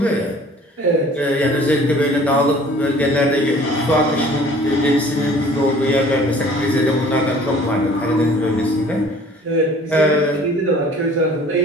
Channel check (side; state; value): both; normal; correlation 0.51